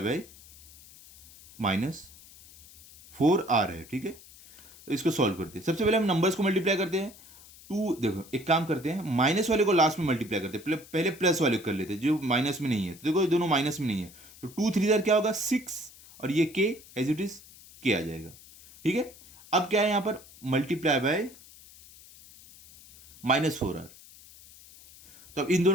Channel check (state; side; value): noise; left; hiss, 21 dB below the sound